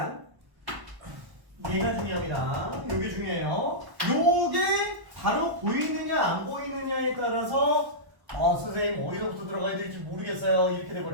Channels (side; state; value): left; late; 1.1 ms